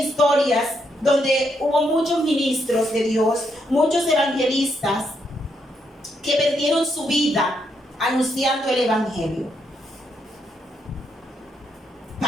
historias donde hubo muchos ministros de Dios, muchos evangelistas que perdieron su vida anunciando el evangelio.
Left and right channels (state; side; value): normal; both; correlation 0.77